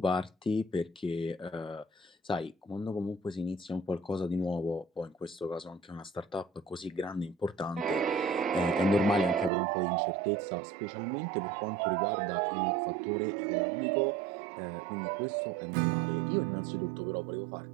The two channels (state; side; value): drops out; left; at 9.5 s